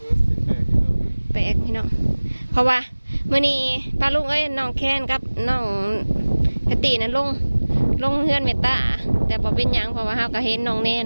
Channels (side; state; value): both; inverted; correlation -1.00